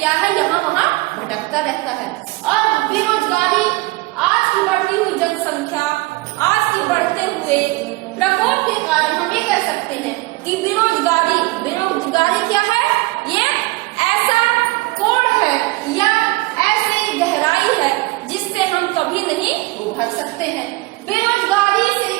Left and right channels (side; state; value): left; quieter; 22.0 dB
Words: है, यहाँ वहाँ भटकता रहता है। और बेरोजगारी, आज की बढ़ती हुई जनसंख्या, आज की बढ़ते हुए प्रकोप के कारण हम ये कह सकते हैं कि बेरोजगारी क्या है? ये ऐसा कोड़ है या ऐसी गहराई है जिससे हम कभी नहीं उभर सकते हैं। बेरोजगारी से